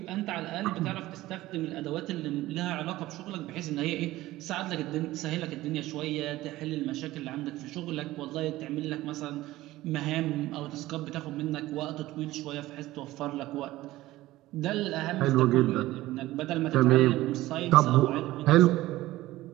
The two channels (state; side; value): quieter; left; 16.9 dB